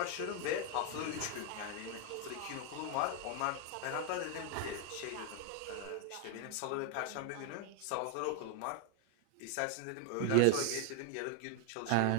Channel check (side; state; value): both; different; correlation 0.00